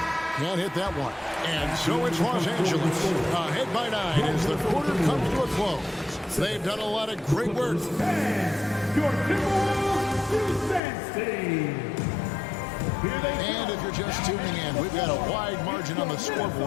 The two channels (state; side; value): drops out; right; at 10.8 s